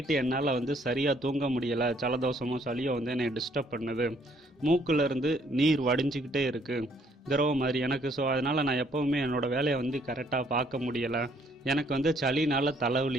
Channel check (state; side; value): normal; both; correlation 0.66